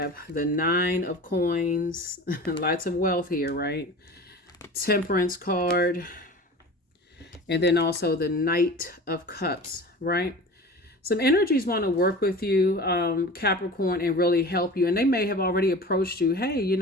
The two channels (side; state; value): both; normal; correlation 0.37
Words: the 9 of Coins. Lots of wealth here, right? Temperance card. And then also the Knight of Cups, right? Some energies want to work with you, Capricorn, and really help you. And they may have already approached you. Hey,